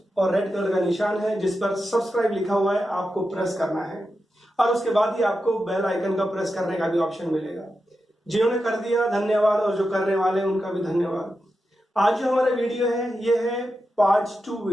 और रेड कलर का निशान है जिस पर सब्सक्राइब लिखा हुआ है, आपको प्रेस करना है और उसके बाद ही आपको बेल आइकन का प्रेस करने का भी ऑप्शन मिलेगा। जिन्होंने कर दिया धन्यवाद और जो करने वाले हैं उनका भी धन्यवाद। आज जो हमारा वीडियो है ये है पार्ट 2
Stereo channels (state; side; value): normal; both; correlation 0.89